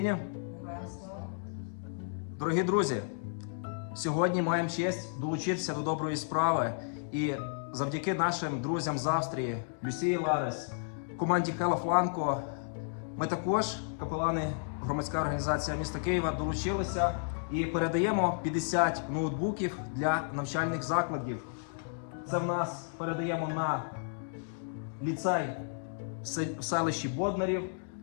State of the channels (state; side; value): silent; right; digital silence